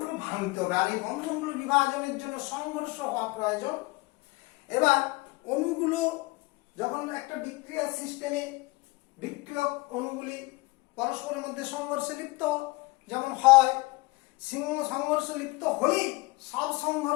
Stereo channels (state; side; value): quieter; right; 23.4 dB